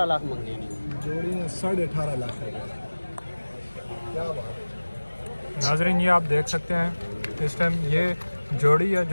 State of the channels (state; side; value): inverted; both; correlation -1.00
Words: लाख मांगे नहीं। जोड़ी ने 18.5 लाख रुपए। क्या बात है। नाजरीन ये आप देख सकते हैं इस टाइम ये जोड़ी है